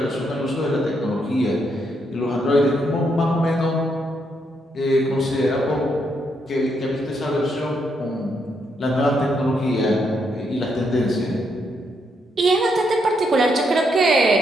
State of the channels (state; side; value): normal; both; correlation 0.77